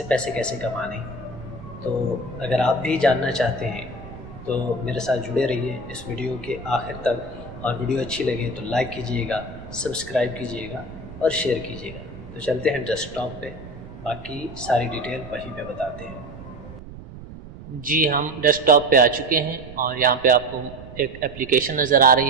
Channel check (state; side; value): noise; right; rumble, 15 dB below the sound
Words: पैसे कैसे कमाने। तो अगर आप भी जानना चाहते हैं तो मेरे साथ जुड़े रहिए इस वीडियो के आखिर तक। और वीडियो अच्छी लगे तो लाइक कीजिएगा, सब्सक्राइब कीजिएगा और शेयर कीजिएगा। तो चलते हैं डेस्कटॉप पे, बाकी सारी डिटेल वहीं पे बताते हैं। जी, हम डेस्कटॉप पे आ चुके हैं और यहाँ पे आपको एक एप्लीकेशन नज़र आ